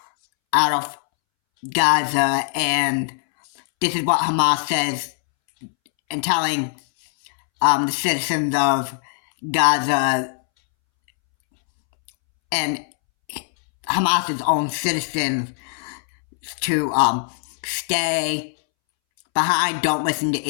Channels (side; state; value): right; silent; 65 dB below the other